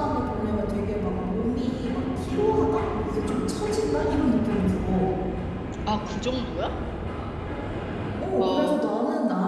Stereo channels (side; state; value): both; identical; correlation 1.00